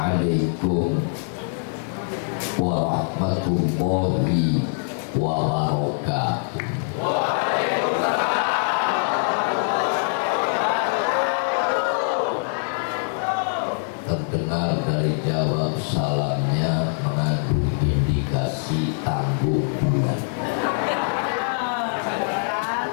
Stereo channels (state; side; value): silent; right; 56 dB below the other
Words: warahmatullahi wabarakatuh. Terdengar dari jawab salamnya mengandung indikasi tangguh bulan.